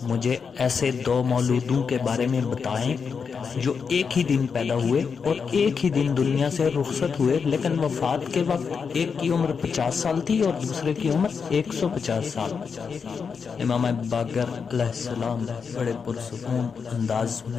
مجھے ایسے دو مولودوں کے بارے میں بتائیں جو ایک ہی دن پیدا ہوئے اور ایک ہی دن دنیا سے رخصت ہوئے، لیکن وفات کے وقت ایک کی عمر 50 سال تھی اور دوسرے کی عمر 150 سال۔ امام باقر علیہ السلام بڑے پرسکون انداز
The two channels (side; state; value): right; quieter; 5.9 dB